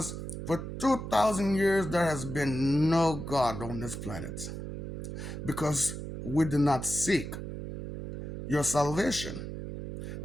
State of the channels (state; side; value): noise; right; hum, 7 dB below the sound